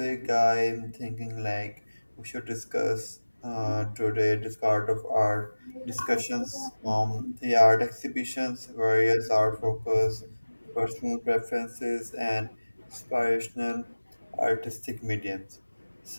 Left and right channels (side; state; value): both; inverted; correlation -1.00